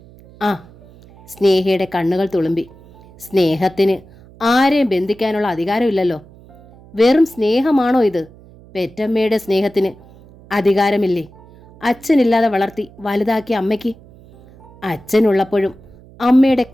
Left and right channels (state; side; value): noise; right; hum, 23 dB below the sound